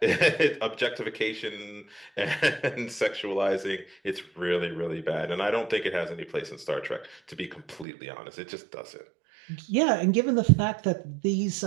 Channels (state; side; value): drops out; left; at 7.9 s